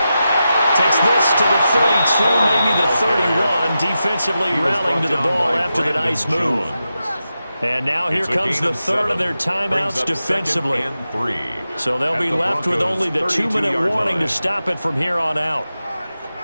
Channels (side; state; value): both; inverted; correlation -0.90